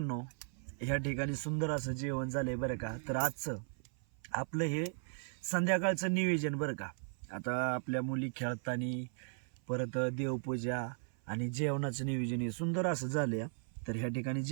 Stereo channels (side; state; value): left; silent; 53 dB below the other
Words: ह्या ठिकाणी सुंदर असं जेवण झालंय बरं का. तर आजचं आपलं हे संध्याकाळचं नियोजन बरं का. आता आपल्या मुली खेळताना परत देवपूजा आणि जेवणाचं नियोजन हे सुंदर असं झालंय. तर ह्या ठिकाणी